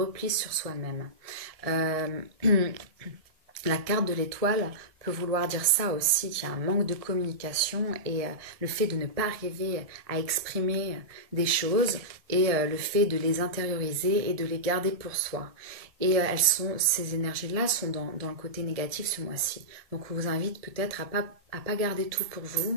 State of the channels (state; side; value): late; left; 1.6 ms